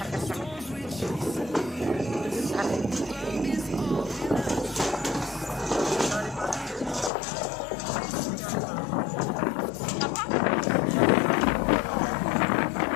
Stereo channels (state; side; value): drops out; right; at 7.1 s